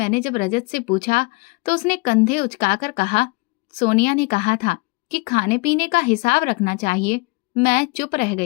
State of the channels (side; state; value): right; quieter; 27.2 dB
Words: जब रजत से पूछा तो उसने कंधे उचकाकर कहा, सोनिया ने कहा था कि खाने पीने का हिसाब रखना चाहिए। मैं चुप रह